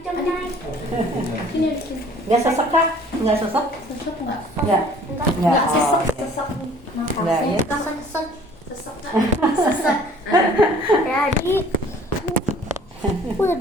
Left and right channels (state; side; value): normal; both; correlation 0.52